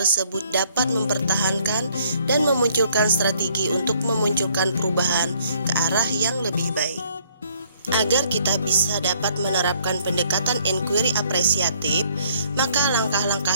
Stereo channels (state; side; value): inverted; both; correlation -0.64